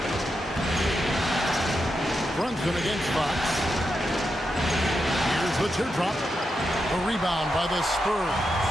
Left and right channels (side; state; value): both; normal; correlation 0.86